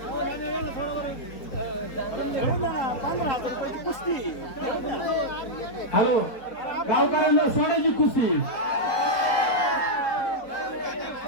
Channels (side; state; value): right; late; 4.2 ms